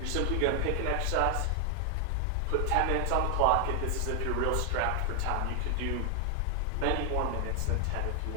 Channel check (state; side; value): different; both; correlation 0.00